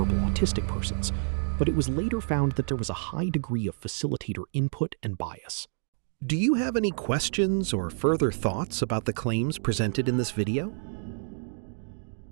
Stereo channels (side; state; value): left; silent; digital silence